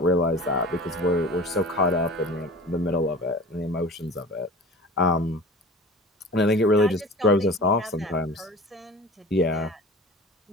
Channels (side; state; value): both; normal; correlation 0.39